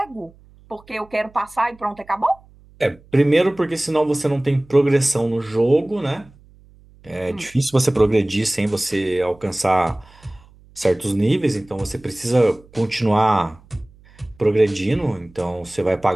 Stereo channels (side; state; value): right; noise; hum, 27 dB below the sound